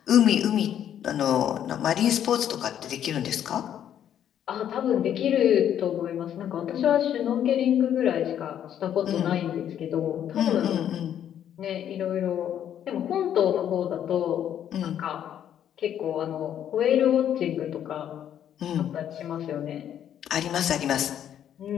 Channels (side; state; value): right; quieter; 10.0 dB